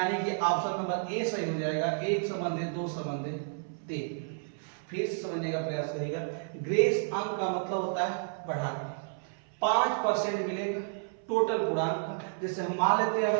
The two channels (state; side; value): silent; left; 57 dB below the other